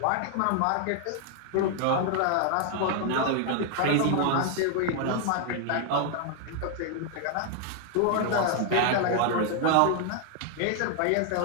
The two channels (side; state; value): both; different; correlation 0.00